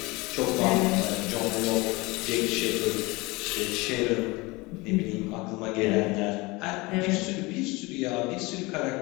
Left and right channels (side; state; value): right; quieter; 23.8 dB